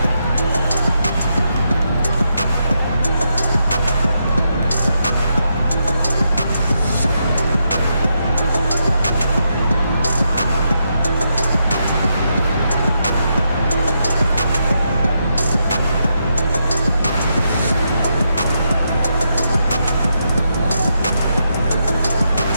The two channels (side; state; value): both; inverted; correlation -0.82